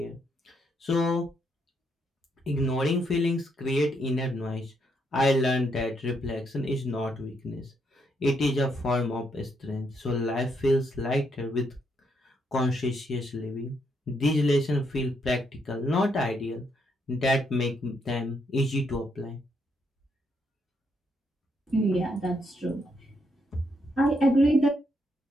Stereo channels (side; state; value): both; normal; correlation 0.76